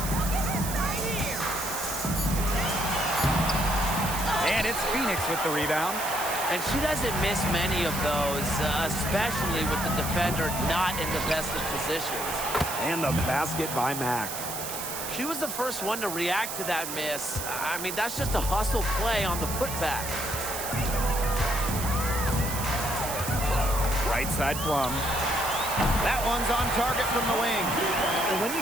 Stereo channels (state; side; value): noise; right; hiss, 6 dB below the sound